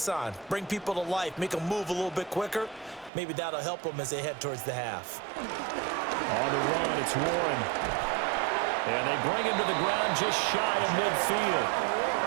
on, bring people to life, make them move a little bit quicker. Maybe that'll help them as they head towards the half. On the run, it's Warren. And they bring him to the ground just shy of midfield.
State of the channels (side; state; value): left; drops out; at 3.1 s